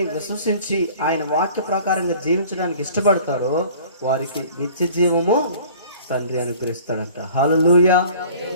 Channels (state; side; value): inverted; both; correlation -0.48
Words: విశ్వసించి ఆయన వాక్య ప్రకారంగా జీవించడానికి ఇష్టపడతారో వారికి నిత్య జీవము తండ్రి అనుగ్రహిస్తాడంట. హల్లెలూయా.